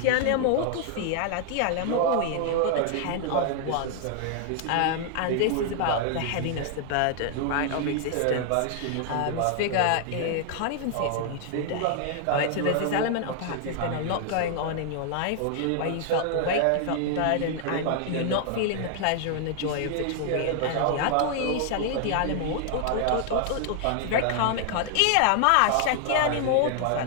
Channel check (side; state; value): both; different; correlation 0.00